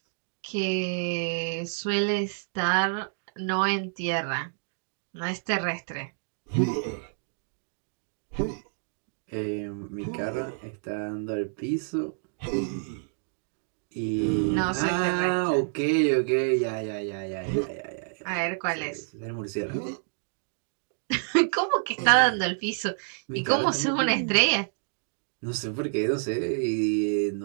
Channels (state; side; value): silent; left; digital silence